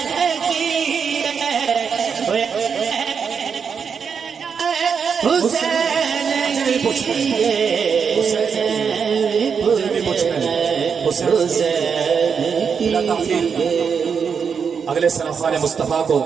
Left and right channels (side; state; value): left; quieter; 6.3 dB